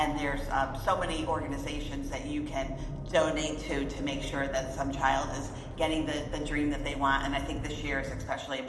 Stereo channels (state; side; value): identical; both; correlation 1.00